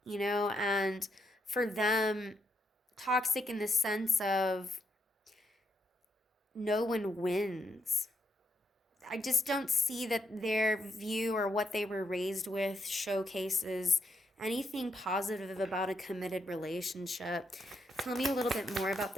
you know, and for them, toxic in the sense of no one wins. I just don't see that their view or what they were raised with showcases anything positive about a committed relationship. Tell me a little bit more about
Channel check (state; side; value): normal; both; correlation 0.79